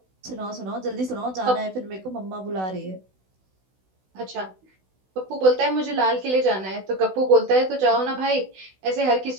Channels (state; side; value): late; left; 16 ms